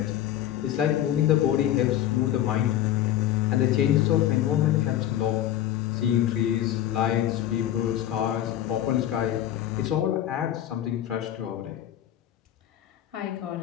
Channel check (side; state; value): right; quieter; 12.0 dB